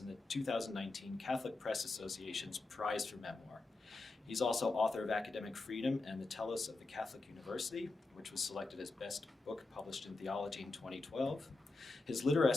the 2019 Catholic Press Association's Prize for Memoir. He's also author of Academic Freedom and the Telos of the Catholic University, which was selected as Best Book Published in Theology in 2012. His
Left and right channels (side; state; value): right; quieter; 3.4 dB